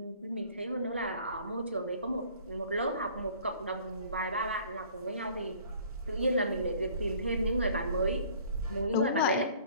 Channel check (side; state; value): both; inverted; correlation -0.53